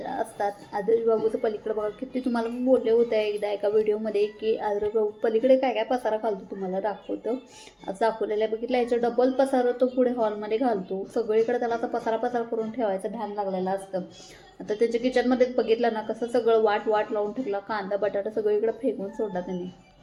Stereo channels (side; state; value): both; identical; correlation 1.00